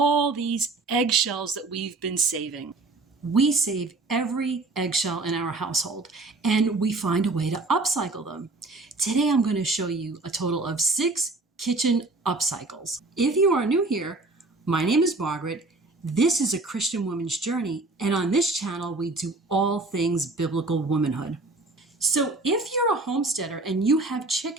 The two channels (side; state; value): left; quieter; 3.2 dB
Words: these eggshells that we've been saving. We save every eggshell in our household and we find a way to upcycle them. Today I'm going to show you a total of 6 kitchen upcycles. If you are new here, my name is Margaret. This is a Christian woman's journey, and on this channel we do all things biblical womanhood. So if you're a homesteader and you have